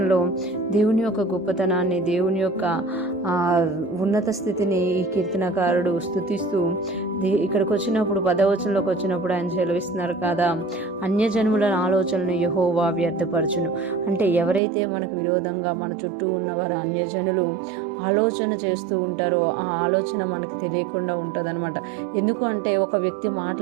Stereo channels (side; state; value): left; drops out; at 14.6 s